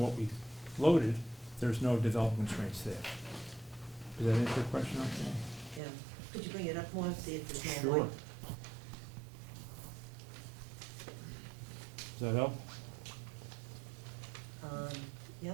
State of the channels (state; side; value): drops out; left; at 5.8 s